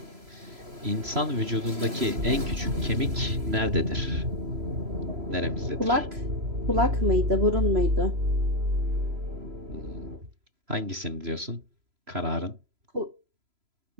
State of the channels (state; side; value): late; left; 3.0 ms